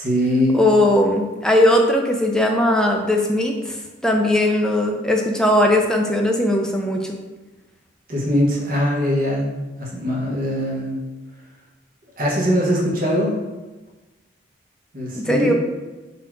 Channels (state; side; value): normal; both; correlation 0.63